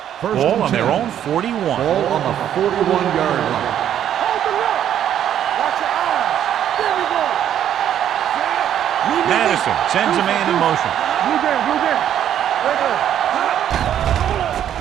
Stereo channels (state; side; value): quieter; left; 10.3 dB